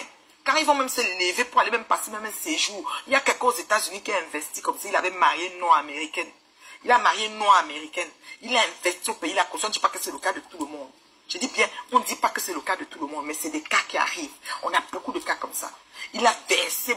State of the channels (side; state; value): both; identical; correlation 1.00